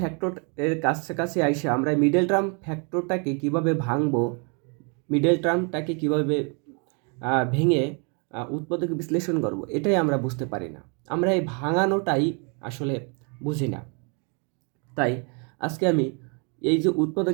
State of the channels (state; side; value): quieter; left; 35.7 dB